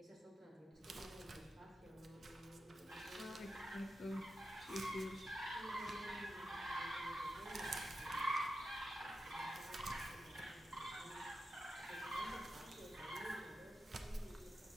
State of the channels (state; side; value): normal; both; correlation 0.90